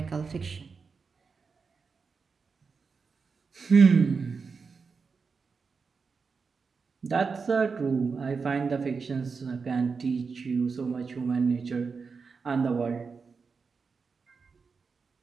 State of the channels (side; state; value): left; quieter; 5.1 dB